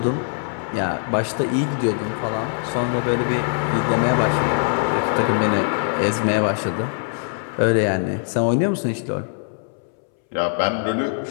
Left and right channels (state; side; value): silent; right; 64 dB below the other